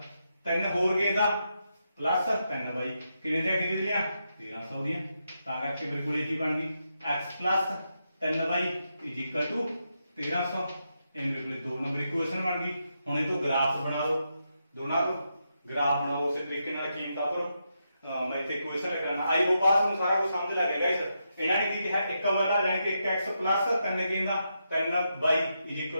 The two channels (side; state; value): both; inverted; correlation -0.84